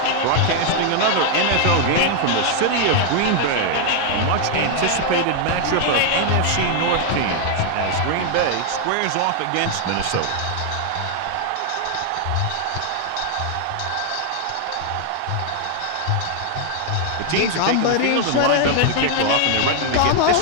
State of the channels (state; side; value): different; both; correlation 0.00